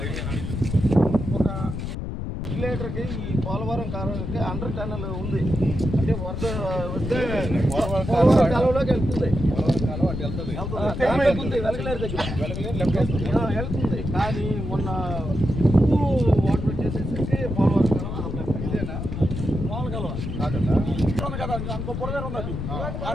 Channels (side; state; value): left; noise; rumble, 5 dB below the sound